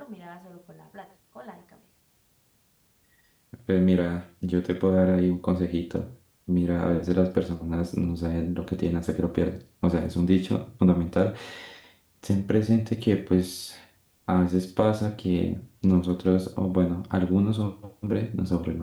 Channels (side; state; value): both; identical; correlation 1.00